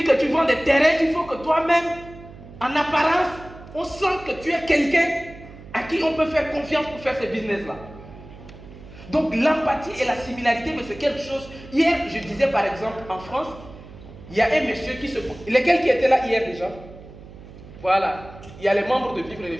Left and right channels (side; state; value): right; noise; hum, 17 dB below the sound